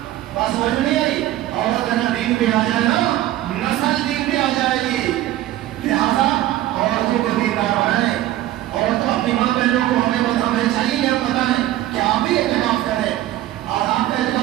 بات سمجھ نہیں آئی. عورت نا دین پہ آ جائے نا, نسل دین پہ آ جائے گی. لہذا عورتوں کو دیندار بنائیں, اور تو اپنی ماں بہنوں کو ہمیں چاہیے کہ آپ بتائیں کہ آپ بھی اعتکاف کریں. اور آپ کا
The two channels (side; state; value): left; quieter; 14.4 dB